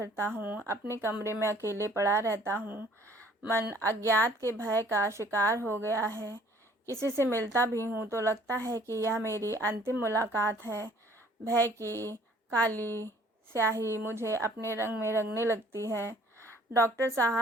हूँ, अपने कमरे में अकेले पड़ा रहता हूँ। मन अज्ञात के भय का शिकार हो गया है। किसी से मिलता भी हूँ तो लगता है कि यह मेरी अंतिम मुलाकात है। भय की काली स्याही मुझे अपने रंग में रंगने लगती है। डॉक्टर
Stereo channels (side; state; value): both; normal; correlation 0.56